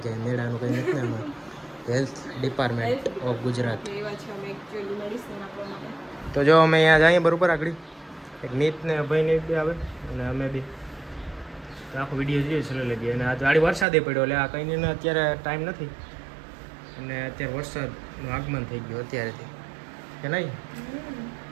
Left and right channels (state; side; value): drops out; left; at 13.9 s